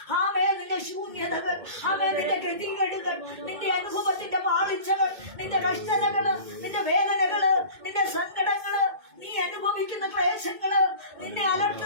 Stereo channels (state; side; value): late; left; 2.1 ms